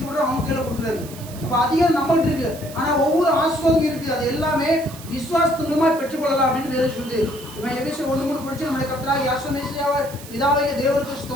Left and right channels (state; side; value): noise; right; hiss, 16 dB below the sound